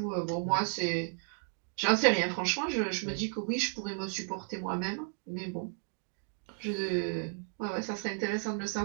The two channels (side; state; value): left; silent; 55 dB below the other